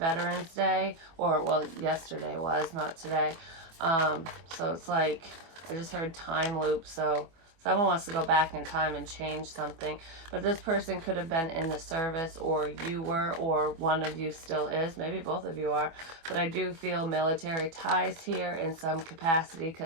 Day, or well, yesterday was, not today. So it's like, I just heard time loop, so someone wants to go back in time and change something. But this person could have been in the service, or you were, or one of you still is. Maybe both of you are. But I do feel military ties here in some capacity,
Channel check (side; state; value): left; late; 24 ms